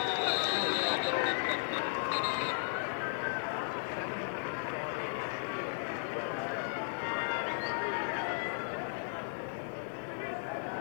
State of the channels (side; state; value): right; silent; digital silence